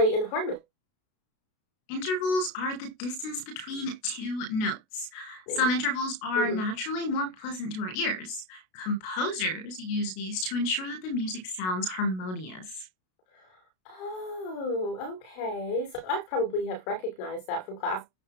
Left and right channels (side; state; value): right; late; 32 ms